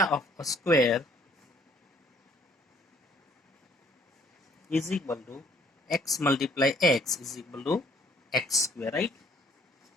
of a square is equal to x multiply x is equal to x square, right?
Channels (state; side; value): normal; both; correlation 0.61